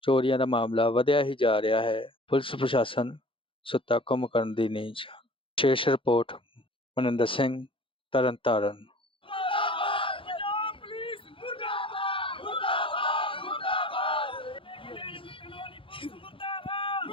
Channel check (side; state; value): right; late; 0.25 ms